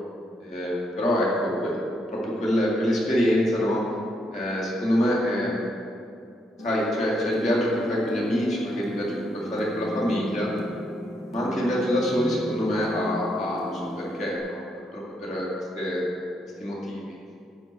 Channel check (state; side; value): normal; both; correlation 0.77